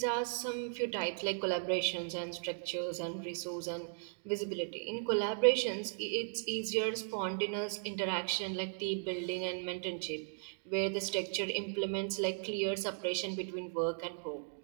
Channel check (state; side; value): silent; left; digital silence